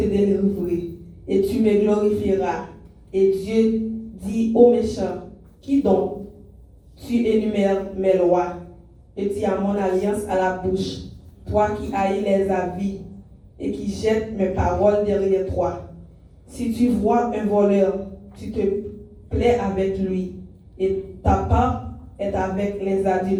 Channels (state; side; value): identical; both; correlation 1.00